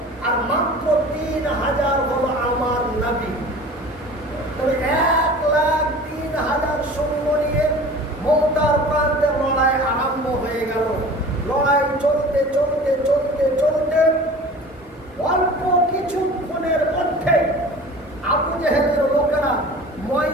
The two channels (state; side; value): normal; both; correlation 0.41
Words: আর মাত্র 3,000 হলো আমার নবী। তবে 1,03,000 সৈন্য নিয়ে মৌতার প্রান্তে লড়াই আরম্ভ হয়ে গেল। লড়াই চলতে চলতে চলতে চলতে অল্প কিছুক্ষণের মধ্যে আবু জেহেলের লোকেরা